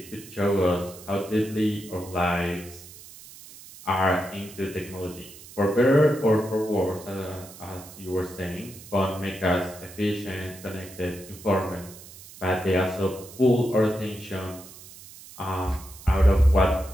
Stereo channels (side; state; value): right; noise; hiss, 18 dB below the sound